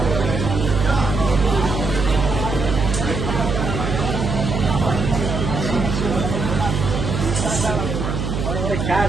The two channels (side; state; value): right; noise; hum, 2 dB below the sound